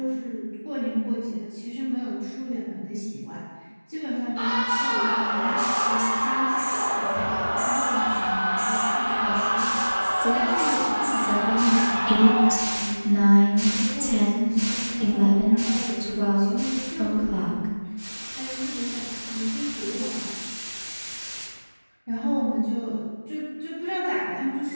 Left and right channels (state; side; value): inverted; both; correlation -1.00